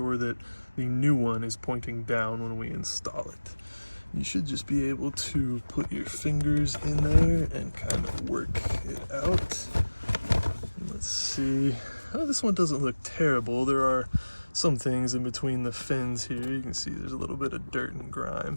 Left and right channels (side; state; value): both; inverted; correlation -1.00